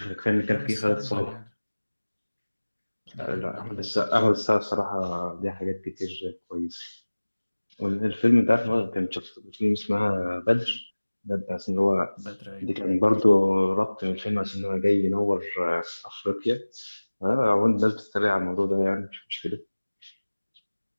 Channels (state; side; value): inverted; both; correlation -1.00